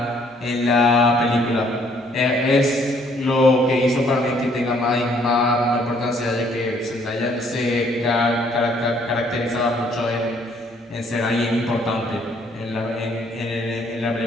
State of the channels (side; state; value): both; normal; correlation 0.64